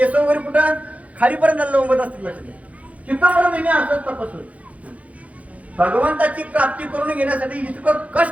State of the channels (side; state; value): left; late; 0.067 ms